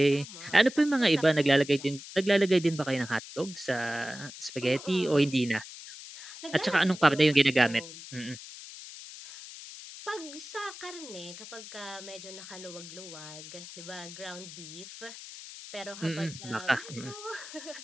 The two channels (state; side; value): noise; left; hiss, 14 dB below the sound